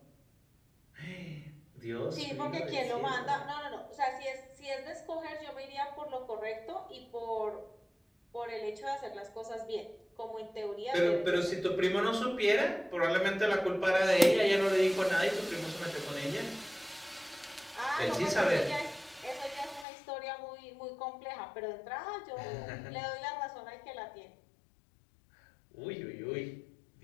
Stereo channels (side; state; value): right; drops out; at 19.9 s